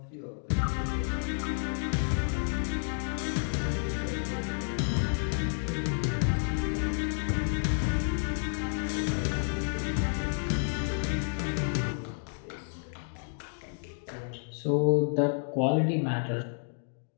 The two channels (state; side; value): silent; right; digital silence